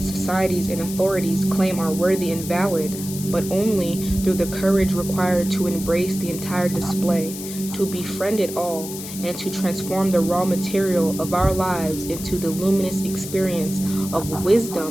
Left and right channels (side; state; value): left; noise; hiss, 10 dB below the sound